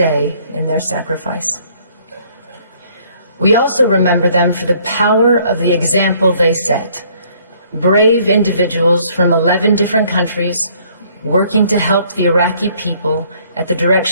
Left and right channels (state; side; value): inverted; both; correlation -0.62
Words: in their sacrifice. We also remember them for the power of the example they set. Brave individuals from 11 different countries working to help the Iraqi people at the